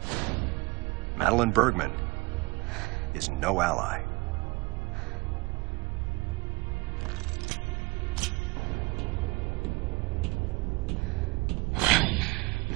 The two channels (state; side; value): quieter; left; 21.5 dB